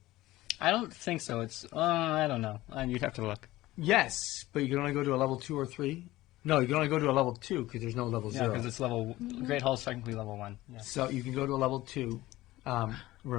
I don't think so. It's, I don't know. You'd have to look. Yes, but you can only go to a level 2 or 3. No, you can only go to a level 2 because there's no level Yeah, 0. because it's level, Great Hall's technically level 1. Yeah. So you can go to a level 2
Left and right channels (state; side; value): quieter; right; 17.2 dB